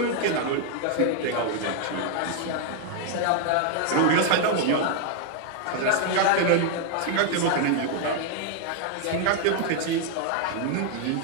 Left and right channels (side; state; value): both; different; correlation 0.00